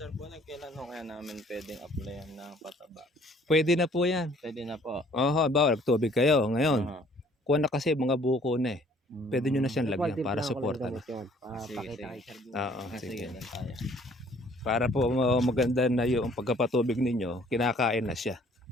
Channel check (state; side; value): normal; both; correlation 0.58